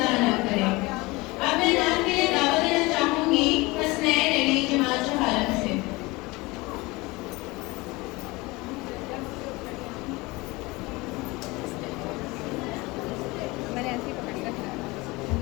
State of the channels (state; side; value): quieter; right; 22.9 dB